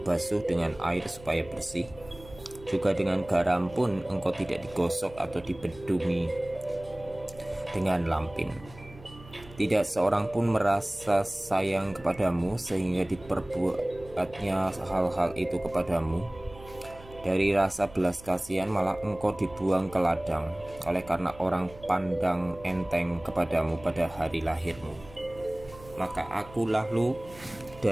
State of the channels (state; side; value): noise; right; hum, 20 dB below the sound